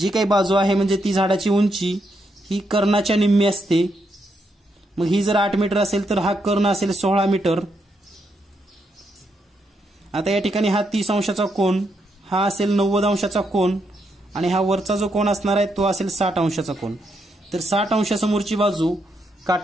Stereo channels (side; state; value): both; normal; correlation 0.79